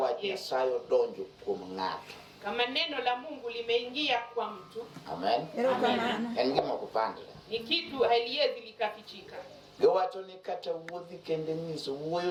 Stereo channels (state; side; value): identical; both; correlation 1.00